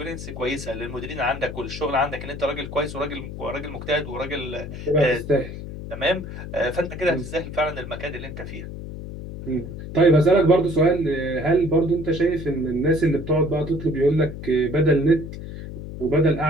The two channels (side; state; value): left; noise; hum, 10 dB below the sound